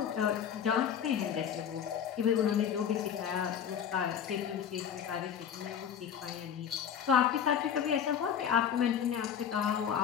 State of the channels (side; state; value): right; quieter; 8.4 dB